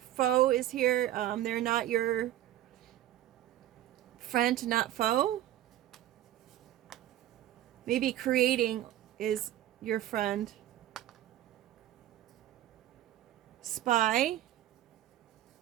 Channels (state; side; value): quieter; left; 13.2 dB